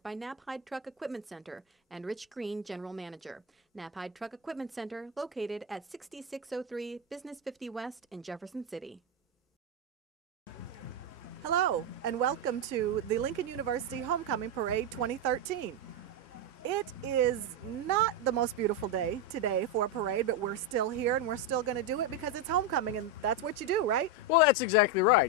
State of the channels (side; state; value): both; normal; correlation 0.07